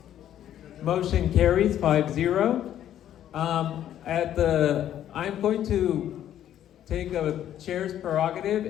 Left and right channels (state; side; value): quieter; right; 11.1 dB